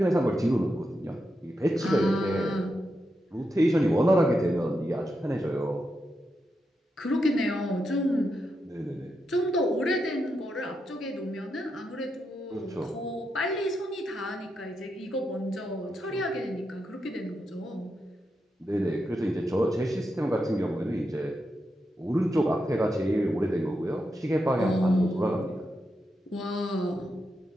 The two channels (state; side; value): normal; both; correlation 0.85